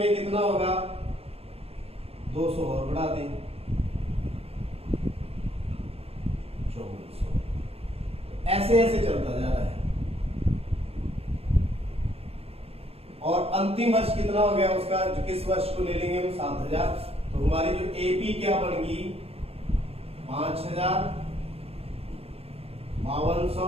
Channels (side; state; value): left; late; 0.29 ms